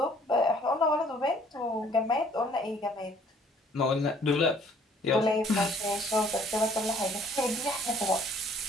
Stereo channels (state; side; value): normal; both; correlation 0.59